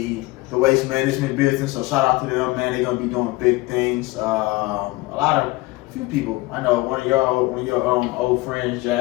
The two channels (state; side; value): quieter; right; 20.8 dB